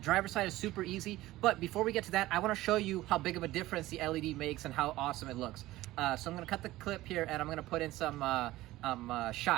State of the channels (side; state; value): left; quieter; 16.9 dB